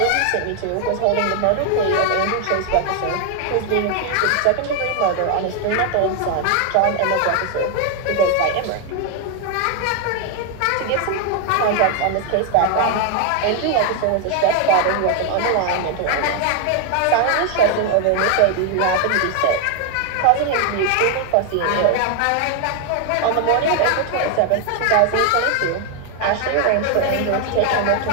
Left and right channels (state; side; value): different; both; correlation 0.01